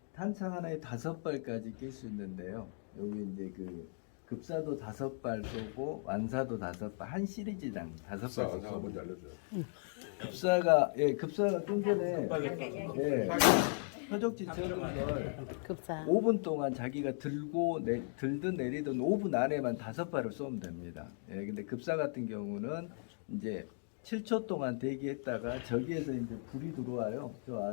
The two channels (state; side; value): silent; right; 53 dB below the other